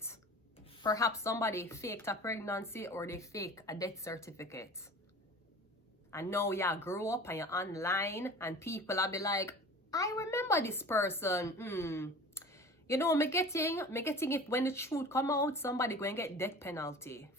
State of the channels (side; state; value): both; normal; correlation 0.40